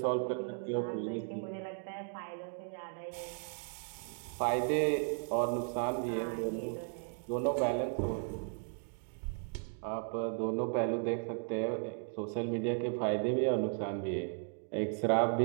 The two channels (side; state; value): left; silent; 54 dB below the other